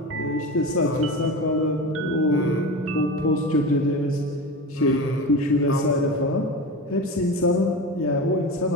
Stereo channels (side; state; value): both; normal; correlation 0.27